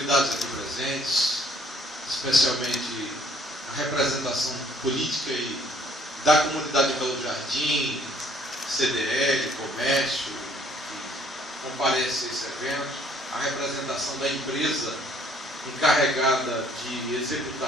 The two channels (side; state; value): both; normal; correlation 0.61